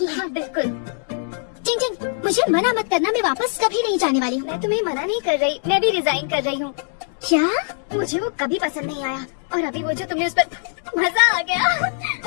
है। हाँ बिल्कुल। चिंग चिंग, मुझे मना मत करना, मैं वापस कभी नहीं जाने वाली हूँ। मैं तुम्हें मना नहीं कर रही, मैं भी रिजाइन कर रही हूँ। क्या? मुझे वो कभी पसंद नहीं आया, और अभी वो जो तुमने उस पर मजा आ गया।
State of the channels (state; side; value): silent; right; digital silence